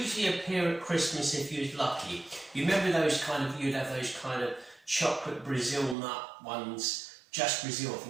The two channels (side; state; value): left; drops out; at 6.0 s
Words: appear at Christmas if you was lucky. You remember those you'd have those kind of chocolate Brazil nut ones, just Brazil I